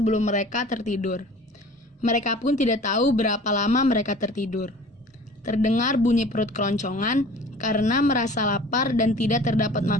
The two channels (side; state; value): both; normal; correlation 0.45